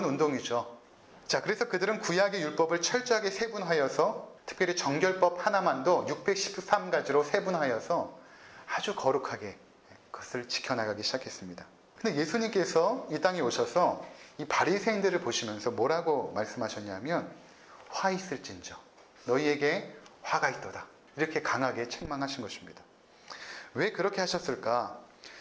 운동이죠. 자, 그래서 그들은 구약의 율법을 철저하게 세분하여서 특별히 정결법 하나만도 613가지로 세분하여서 아주 거룩하게 그것을 지켜나가기 시작했습니다. 근데 예수님께서 이 땅에 오셔서 이 바리새인들을 보시면서 뭐라고 말씀하셨냐면 화 있을진저 너희에게 화가 있도다. 이렇게 강하게 책망하신 것입니다. 왜 그렇게 하셨을까?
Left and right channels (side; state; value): both; identical; correlation 1.00